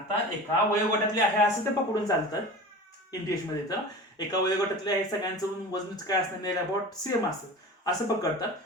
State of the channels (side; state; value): both; normal; correlation 0.35